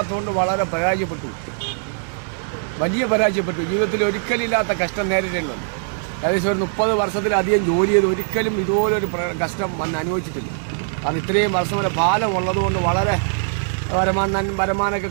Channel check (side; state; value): left; silent; digital silence